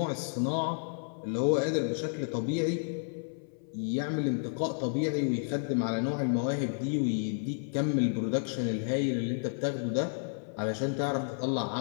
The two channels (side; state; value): right; silent; 57 dB below the other